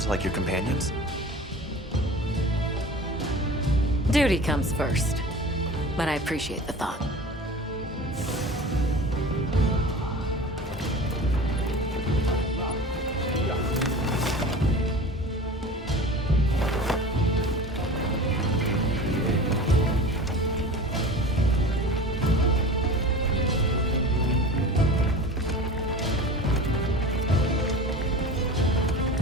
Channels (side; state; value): both; normal; correlation 0.37